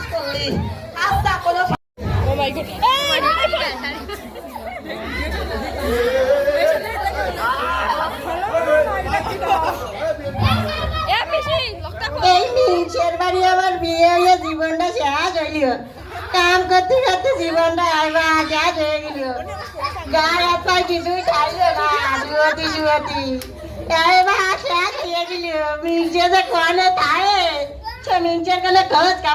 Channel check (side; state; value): both; identical; correlation 1.00